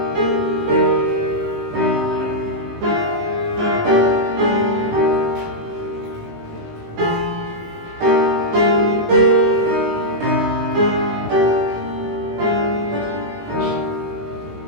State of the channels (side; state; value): left; late; 18 ms